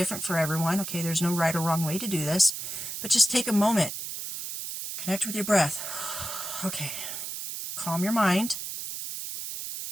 for everyone. Okay, there's no right or wrong way to do this. But just take a moment. Connect with your breath. Okay. Calm your mind.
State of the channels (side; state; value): right; noise; hiss, 6 dB below the sound